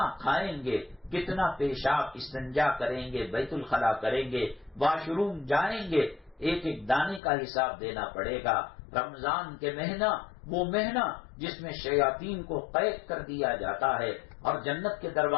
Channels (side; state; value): right; drops out; at 7.2 s